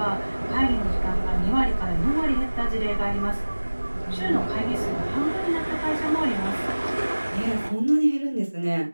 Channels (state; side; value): inverted; both; correlation -1.00